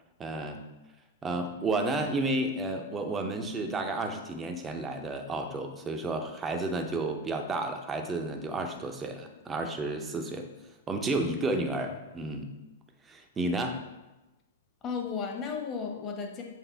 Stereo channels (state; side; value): normal; both; correlation 0.36